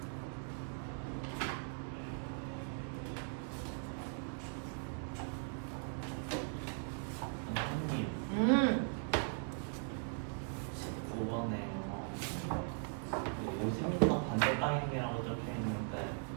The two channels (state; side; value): silent; left; 51 dB below the other